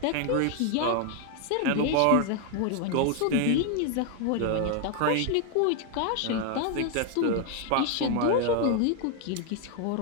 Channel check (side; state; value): both; different; correlation 0.01